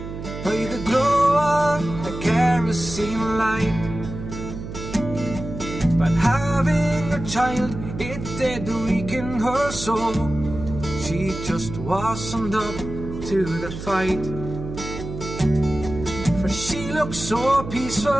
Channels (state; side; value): noise; right; hum, 9 dB below the sound